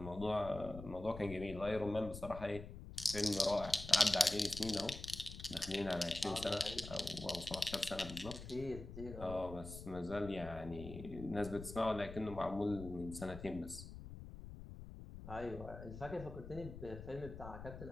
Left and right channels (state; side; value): noise; left; rumble, 11 dB below the sound